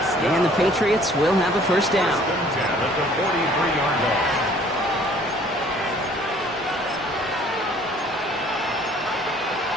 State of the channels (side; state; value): both; normal; correlation 0.56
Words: And the Patriots will have a first down. First and 10 at the 43-yard line.